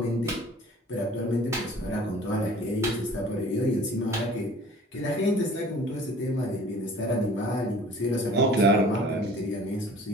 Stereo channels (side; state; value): both; normal; correlation 0.49